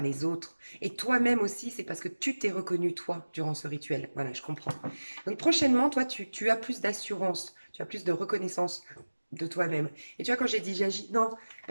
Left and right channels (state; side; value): inverted; both; correlation -1.00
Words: autres. Et toi-même aussi, c'est parce que tu t'es reconnu, toi, durant ce rituel. Voilà, je comprends. Donc prochainement, toi, tu as plus d'assurance, tu as plus de reconnaissance de toi-même. Et tu vois, quand j'ai dit j'agis, non,